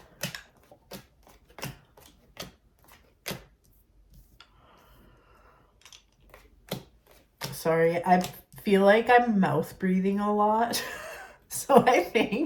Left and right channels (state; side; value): identical; both; correlation 1.00